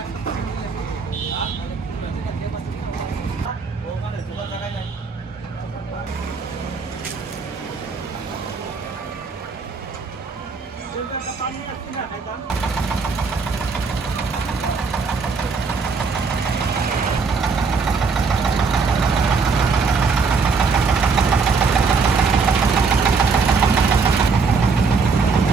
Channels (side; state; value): left; quieter; 4.8 dB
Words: ওখানে খোলা জায়গায় যাই। একটা পানি আসছে না খাইতাম।